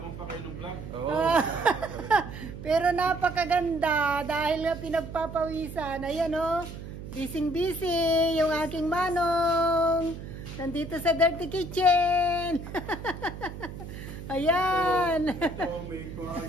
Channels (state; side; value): noise; right; hum, 11 dB below the sound